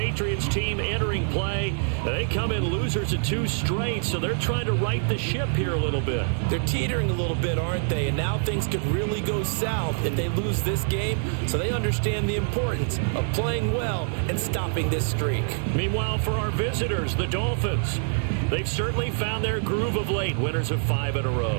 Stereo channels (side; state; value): left; silent; 59 dB below the other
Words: team entering play. They come in losers of 2 straight, so they're trying to right the ship here a little bit. They're teetering a little bit, aren't they? And now things could really go south if they lose this game. So they understand the importance of playing well and stopping this streak. Meanwhile, for our visitors, the Dolphins, they've certainly found their groove of late, winners of 5 in a